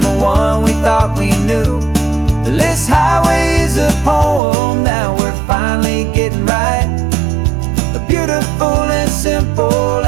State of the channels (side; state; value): left; drops out; at 4.4 s